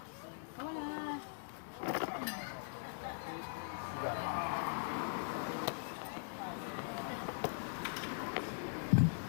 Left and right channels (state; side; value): silent; right; digital silence